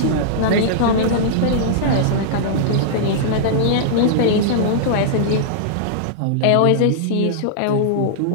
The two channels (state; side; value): different; both; correlation -0.02